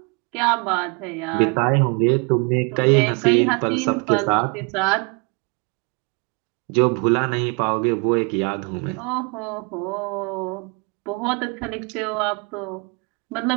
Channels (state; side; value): quieter; left; 31.6 dB